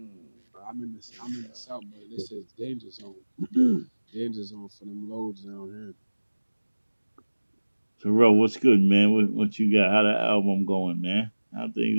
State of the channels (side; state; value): both; inverted; correlation -1.00